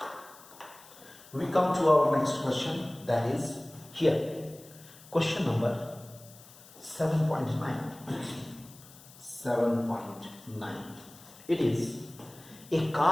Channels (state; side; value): noise; left; hiss, 21 dB below the sound